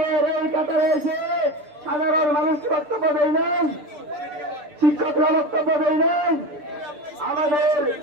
এই কাতারে এসে সাধারণ মানুষ বক্তব্য দেয় নাই, শিক্ষকরা বক্তব্য দেয় নাই, আমাদের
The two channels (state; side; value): late; left; 6.8 ms